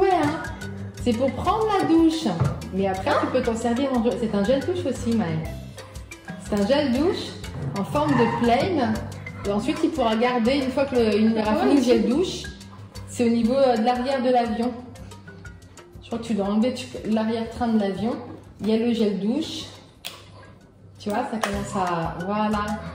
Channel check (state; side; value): identical; both; correlation 1.00